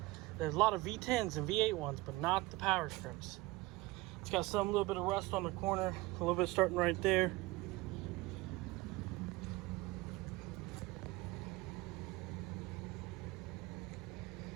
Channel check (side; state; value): left; quieter; 20.5 dB